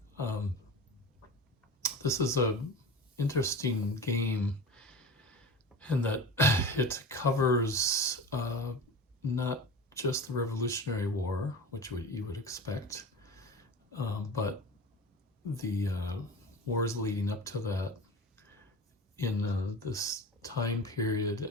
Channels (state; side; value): normal; both; correlation 0.32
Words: This is a interesting game in that it covers not just the Revolutionary War, which you would expect, but the wars leading up to that in this time period